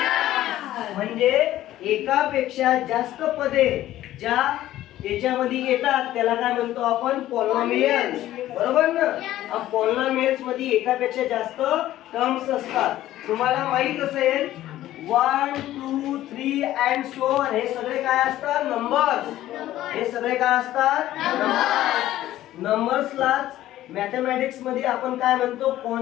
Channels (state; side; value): quieter; right; 14.1 dB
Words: म्हणजे एकापेक्षा जास्त पदे ज्या याच्यामध्ये येतात त्याला काय म्हणतो आपण? पॉलिनॉमियल्स. बरोबर ना? पॉलिनॉमियल्स मध्ये एकापेक्षा जास्त टर्म्स असतात. तुम्हाला माहित असेल 1 2 3 अँड सो ऑन हे सगळे काय असतात? नंबर्स. हे सगळे काय असतात? नंबर्सलाच मॅथमॅटिक्स मध्ये आपण काय म्हणतो?